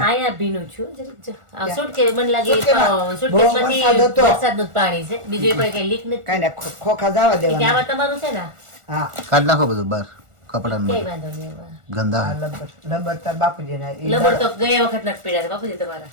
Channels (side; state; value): left; late; 1.4 ms